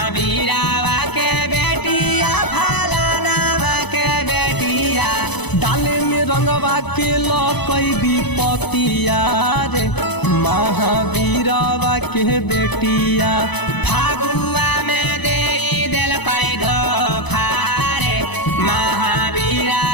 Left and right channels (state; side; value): late; right; 0.99 ms